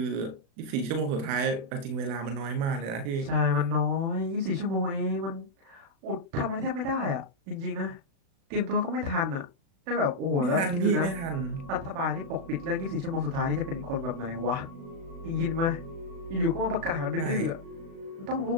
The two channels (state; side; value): late; left; 36 ms